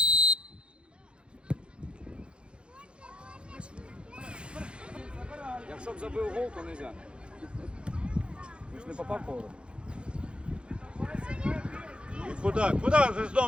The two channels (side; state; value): left; late; 0.056 ms